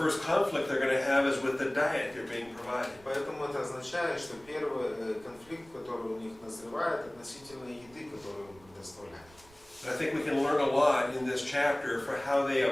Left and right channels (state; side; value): noise; right; rumble, 26 dB below the sound